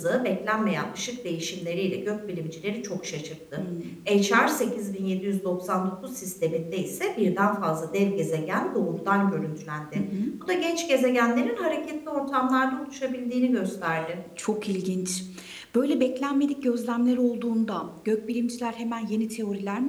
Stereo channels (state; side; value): identical; both; correlation 1.00